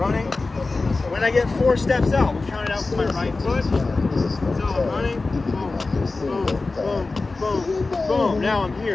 When I get 4 steps out, we'll count it out with my right foot. So I'm running, boom, boom, boom, boom, boom. Now I'm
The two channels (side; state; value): right; quieter; 3.6 dB